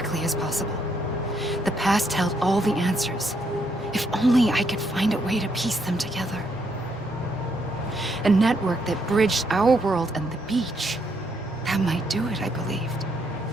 as possible. The past held all the answers. If only I could find a way to piece them together. A network that bridged our world and the beach. That might do it, I believed.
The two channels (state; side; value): normal; both; correlation 0.75